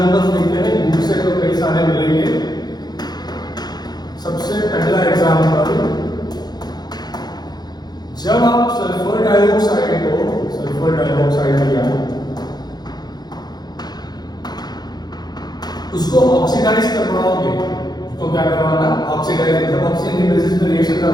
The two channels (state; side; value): late; right; 0.20 ms